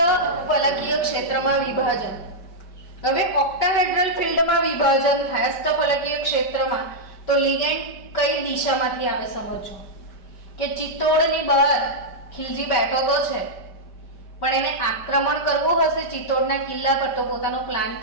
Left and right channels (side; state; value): right; late; 5.1 ms